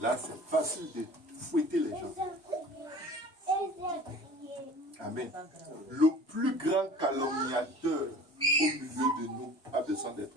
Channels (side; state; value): both; normal; correlation 0.43